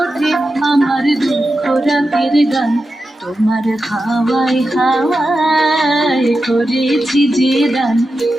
ওঠে আমার দুঃখ রাতের গান। তোমার হাওয়ায় হাওয়ায় করেছি যে দান,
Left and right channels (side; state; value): both; normal; correlation 0.91